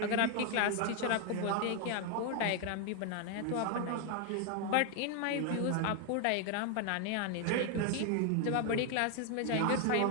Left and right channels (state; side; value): different; both; correlation 0.01